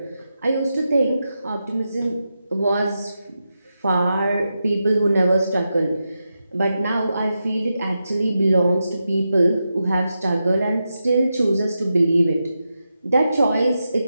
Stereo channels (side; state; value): both; inverted; correlation -0.88